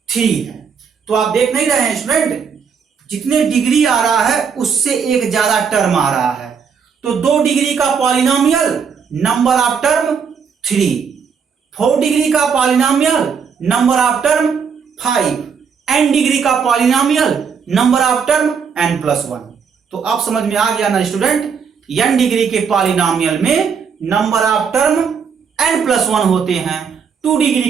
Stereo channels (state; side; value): quieter; left; 6.4 dB